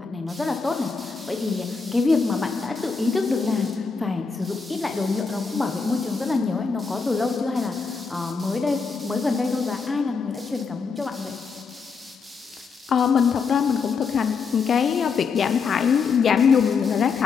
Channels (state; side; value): quieter; right; 5.2 dB